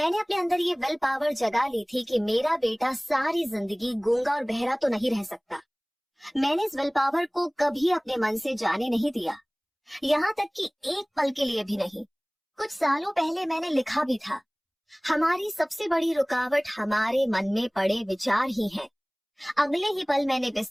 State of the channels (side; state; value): both; identical; correlation 1.00